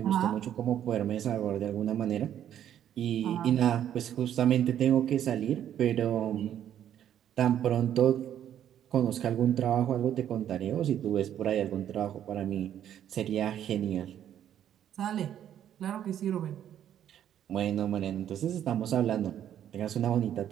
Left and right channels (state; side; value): quieter; left; 10.4 dB